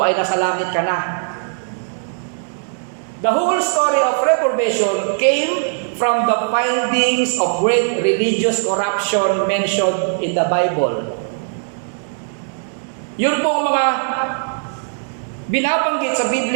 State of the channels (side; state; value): left; silent; digital silence